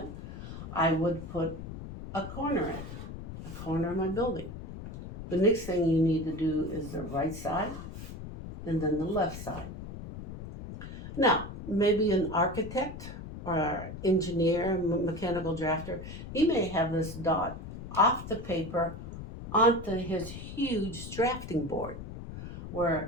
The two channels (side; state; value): left; noise; rumble, 10 dB below the sound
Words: I would put a corner in, a corner of my building. The next thing you need to do is the right side and then the left side. Now, maybe an architect or engineer, mechanical drafter, he may have this dot off the paper onto his huge drafting board,